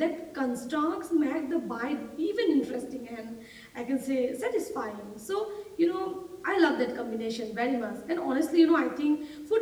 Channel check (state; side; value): identical; both; correlation 1.00